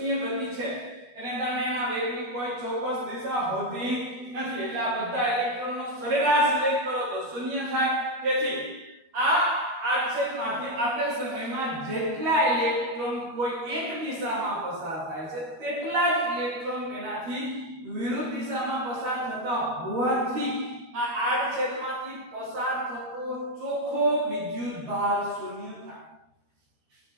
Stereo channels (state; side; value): late; left; 12 ms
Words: ગતિ છે. એને કારણે એના વેગની કોઈ ચોક્કસ દિશા હોતી નથી. એટલે આ બધા ઇલેક્ટ્રોનનો સરેરાશ વેગ કરો તો શૂન્ય થાય. તેથી આ આડછેદમાંથી આપેલ સમયમાં જેટલા ઇલેક્ટ્રોન કોઈ એક દિશામાં પસાર થાય છે તેટલા જ ઇલેક્ટ્રોન તેનાથી વિરુદ્ધ દિશામાં પસાર થતા હોવાથી આ આડછેદમાંથી પસાર થતો ચોખ્ખો વિદ્યુત ભાર શૂન્ય થાય.